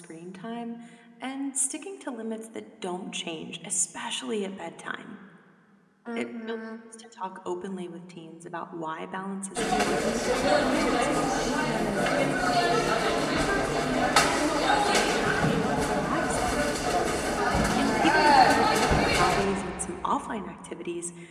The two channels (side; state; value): both; identical; correlation 1.00